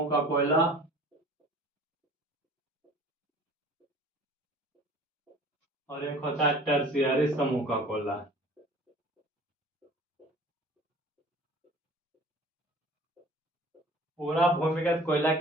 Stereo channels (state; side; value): normal; both; correlation 0.46